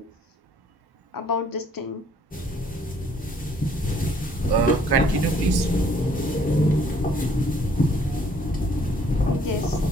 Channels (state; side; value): normal; both; correlation 0.62